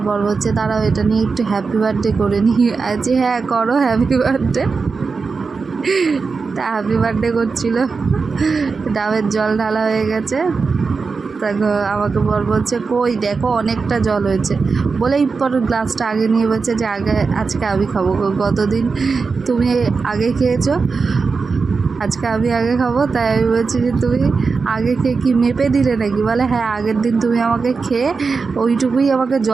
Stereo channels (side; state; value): left; quieter; 4.7 dB